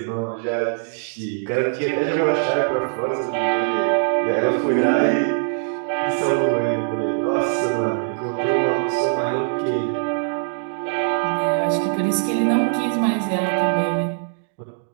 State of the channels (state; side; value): silent; left; 64 dB below the other